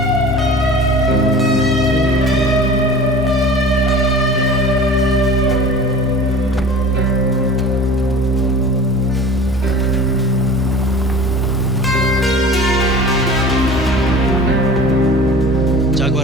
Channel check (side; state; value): both; normal; correlation 0.39